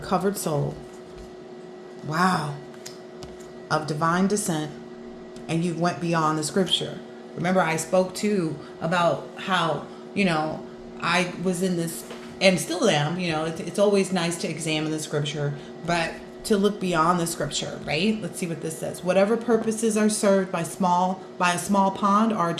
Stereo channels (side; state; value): both; identical; correlation 1.00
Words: soul. Wow. Of divine descent. And you went beyond the scripture. Remember, I spoke too about how, I was in this, and still am, it's always nice to examine the scripture, but to look beyond the scripture, right? Let's see what this says. Whatever purposes are served by a small pond are